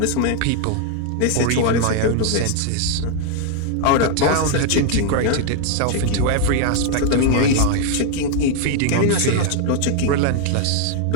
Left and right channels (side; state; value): both; different; correlation 0.00